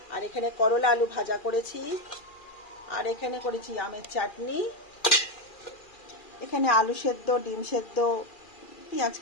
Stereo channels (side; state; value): right; late; 2.4 ms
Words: আর এখানে করলা আলু ভাজা করেছি, আর এখানে করেছি আমের চাটনি, এখানে আলু সেদ্ধ, ডিম সেদ্ধ, পেঁয়াজ